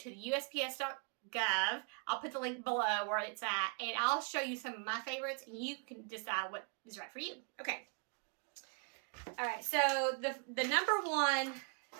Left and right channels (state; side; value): quieter; left; 38.4 dB